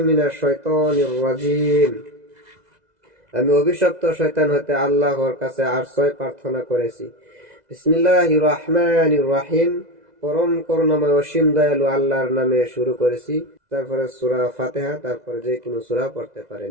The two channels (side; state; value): left; late; 2.0 ms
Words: মিনাশ শাইতানির রাজিম। আমি অভিশপ্ত শয়তান হতে আল্লাহর কাছে আশ্রয় প্রার্থনা করেছি। বিসমিল্লাহির রহমানির রহিম। পরম করুণাময় অসীম দয়ালু আল্লাহর নামে শুরু করেছি। তারপরে সূরা ফাতিহা, তারপরে যে কোনো সূরা পড়তে